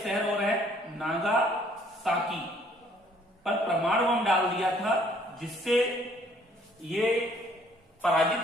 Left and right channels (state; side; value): normal; both; correlation 0.61